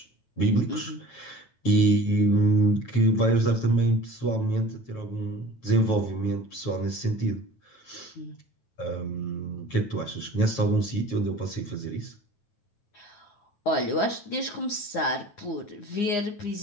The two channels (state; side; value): late; right; 9.1 ms